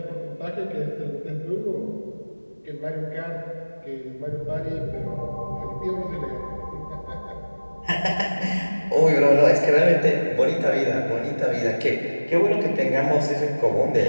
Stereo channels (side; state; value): both; inverted; correlation -1.00